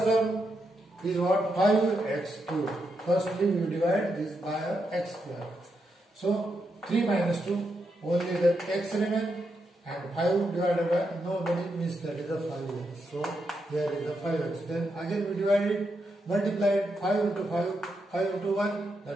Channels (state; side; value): normal; both; correlation 0.83